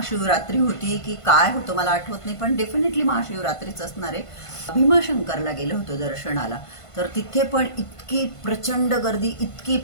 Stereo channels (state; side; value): late; right; 1.5 ms